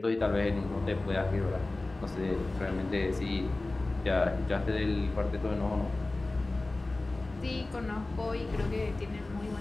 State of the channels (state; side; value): quieter; right; 3.0 dB